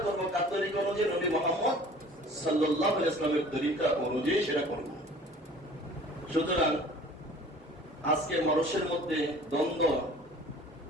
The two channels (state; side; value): normal; both; correlation 0.48